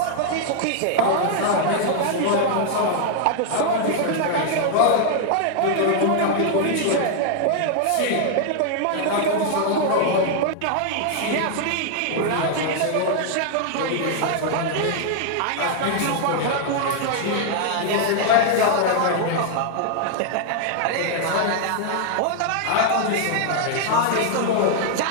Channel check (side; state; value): both; different; correlation -0.01